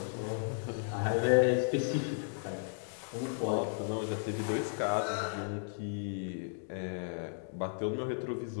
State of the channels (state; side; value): silent; right; digital silence